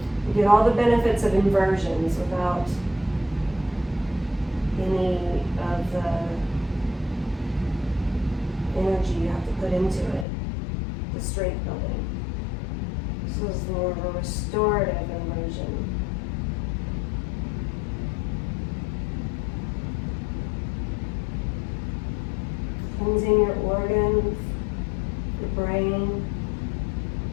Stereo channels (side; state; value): right; drops out; at 10.2 s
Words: You get all the benefits of inversions without any of the energy you have to put into it, the strength building. This is more of a restorative inversion. Cleansing your organs, your brain.